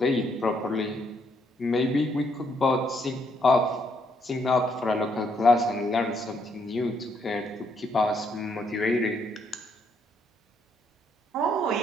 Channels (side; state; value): both; normal; correlation 0.73